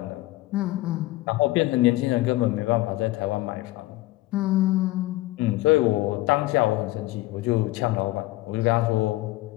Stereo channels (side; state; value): right; quieter; 18.4 dB